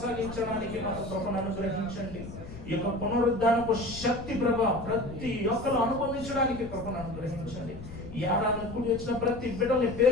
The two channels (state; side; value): noise; left; rumble, 12 dB below the sound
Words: మాకు కృపను అనుగ్రహించండి. ఈ యొక్క పునరుద్ధానపు శక్తి ప్రభ ప్రతి ఒక్కరు అనుభవించడానికి కృపను అనుగ్రహించండి. ఈ ఏడాది కూడి వచ్చిన ప్రతి బిడ్డల్ని